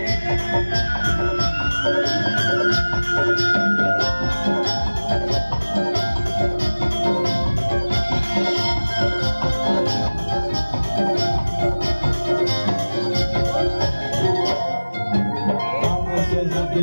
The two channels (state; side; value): inverted; both; correlation -1.00